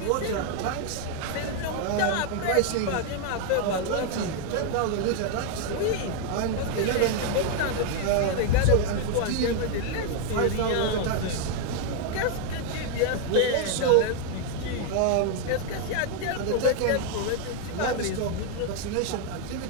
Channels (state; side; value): different; both; correlation 0.00